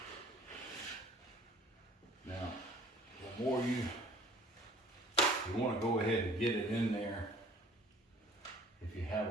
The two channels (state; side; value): normal; both; correlation 0.52